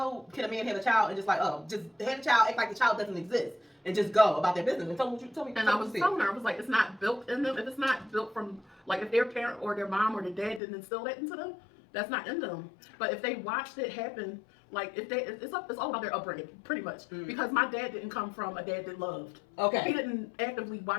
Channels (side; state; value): right; drops out; at 10.6 s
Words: can a man have a child and just like, just have a child, act like the child doesn't exist, and just go about their business. And tell me. And I was telling her, I was like, it's not built in them. If it's not built from, like, if their parent or their mom or their dad didn't instill that into them, that's not in them. But if they watched it happen, like, it's all about their upbringing, pretty much. Because my dad didn't come from a dad that loved. Okay. He didn't actively